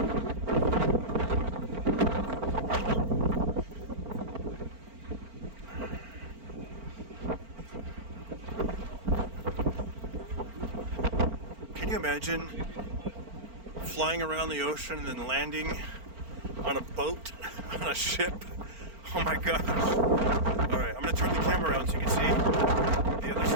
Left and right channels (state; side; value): late; left; 4.4 ms